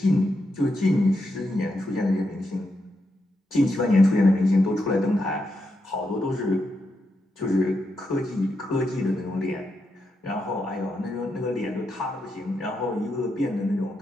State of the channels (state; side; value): normal; both; correlation 0.84